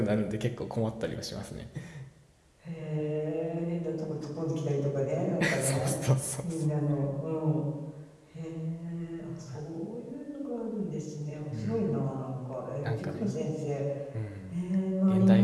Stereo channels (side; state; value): both; identical; correlation 1.00